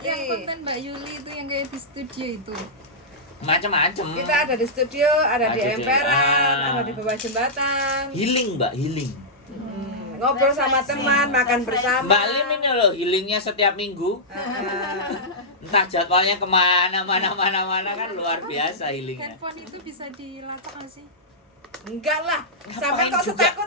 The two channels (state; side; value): normal; both; correlation -0.12